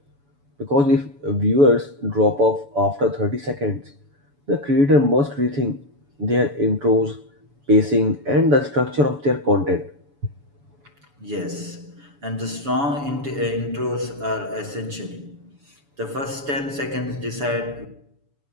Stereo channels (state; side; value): late; left; 7.0 ms